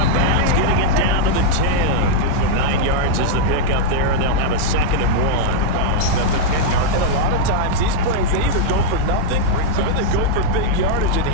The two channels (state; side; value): different; both; correlation -0.02